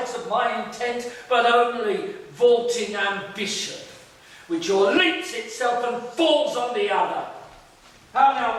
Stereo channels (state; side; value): identical; both; correlation 1.00